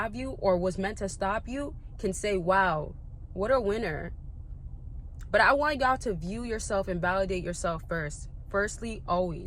you or was meant to stop you can say, wow, what a winner. But I want y'all to view yourself and validate yourself first. Firstly,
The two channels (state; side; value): identical; both; correlation 1.00